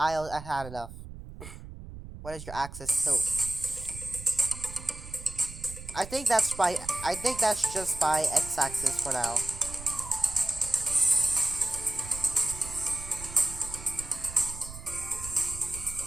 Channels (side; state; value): right; noise; rumble, 13 dB below the sound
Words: had enough. What is your axis tilt? I think that's by. I think that's just by x-axis for now.